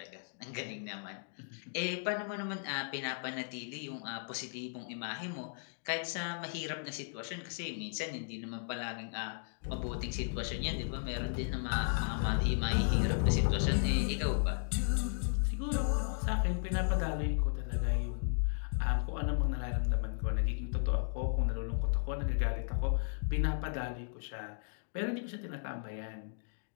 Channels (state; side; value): silent; right; digital silence